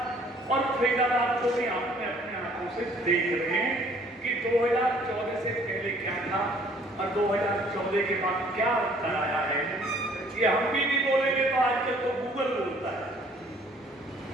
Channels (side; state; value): both; normal; correlation 0.58